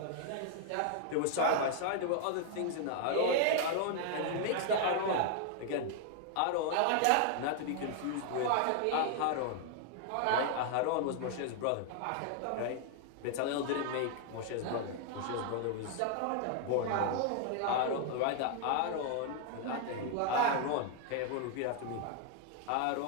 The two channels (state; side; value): different; both; correlation 0.00